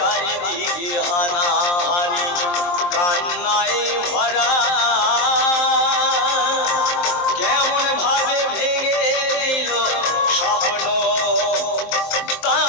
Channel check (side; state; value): right; late; 23 ms